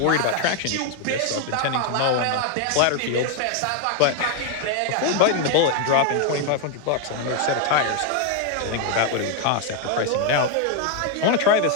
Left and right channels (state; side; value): different; both; correlation 0.01